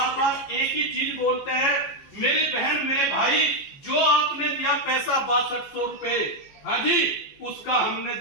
एक ही चीज बोलते हैं, मेरी बहन मेरे भाई, जो आपने दिया पैसा 6200 रुपए, उसका हमने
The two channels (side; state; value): right; late; 14 ms